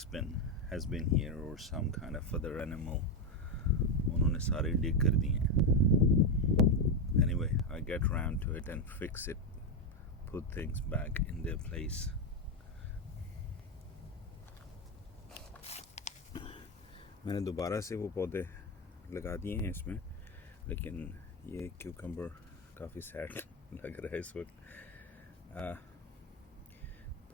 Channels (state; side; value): normal; both; correlation 0.09